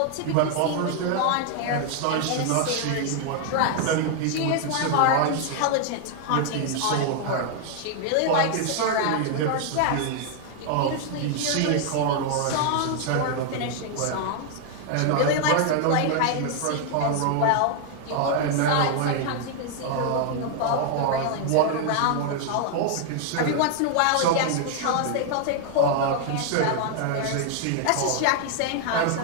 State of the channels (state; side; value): different; both; correlation 0.00